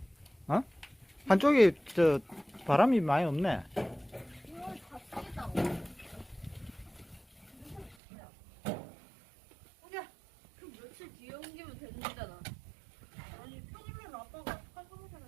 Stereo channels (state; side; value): drops out; left; at 8.0 s